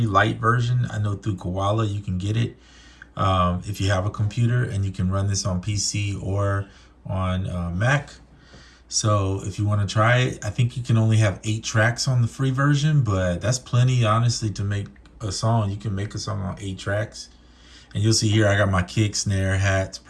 light version. I know through Koala you can get it if you have a computer, and you can run this on PC or on Mac. So if you want to try it, I think you can only have 8 tracks on the free version, but that's plenty, honestly, to make a song. You can make a song on 8 tracks, and you'll see here I got my kick, snare, hats,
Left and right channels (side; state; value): both; identical; correlation 1.00